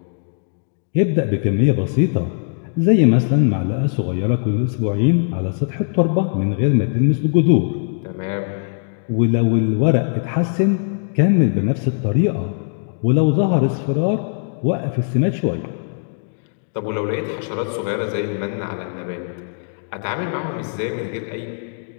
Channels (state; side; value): silent; right; digital silence